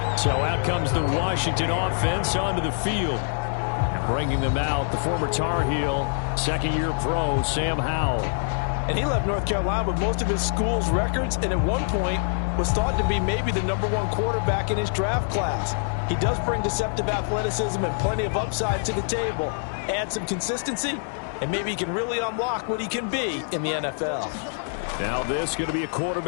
So out comes the Washington offense onto the field. And bringing them out, the former Tar Heel, second-year pro, Sam Howell. And he left North Carolina with most of his school's records, and at one point was thought to be maybe the #1 quarterback in his draft class. He does bring deceptive athleticism and plenty of upside to the table. Add some consistency, and maybe he can really unlock what he can be in the NFL. Now this is going to be a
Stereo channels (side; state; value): right; silent; digital silence